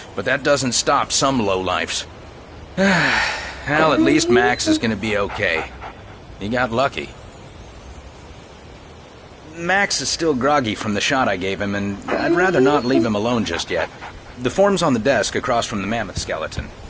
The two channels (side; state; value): both; identical; correlation 1.00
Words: But that doesn't stop some lowlifes. Well, at least Max is gonna be okay. He got lucky. Max is still groggy from the shot I gave him, and I'd rather not leave him alone just yet. The form's on the desk across from the mammoth skeleton.